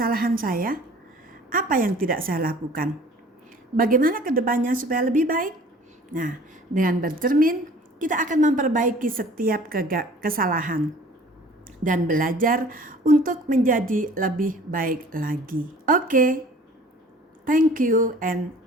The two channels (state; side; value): normal; both; correlation 0.49